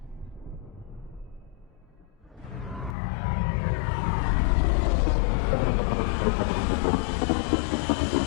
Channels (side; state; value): right; drops out; at 3.0 s